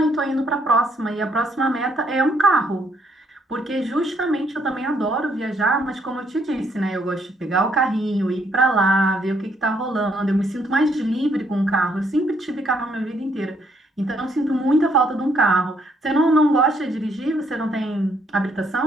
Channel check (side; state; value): both; normal; correlation 0.70